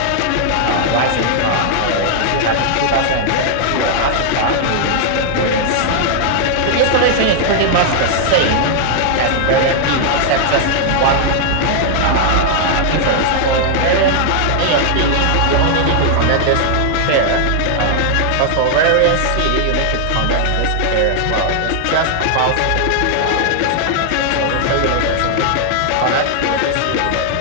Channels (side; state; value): both; different; correlation 0.00